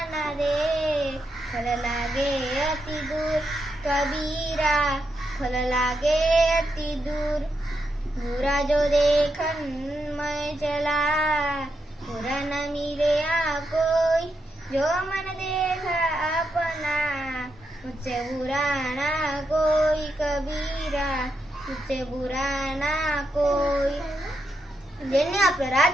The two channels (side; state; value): both; normal; correlation 0.83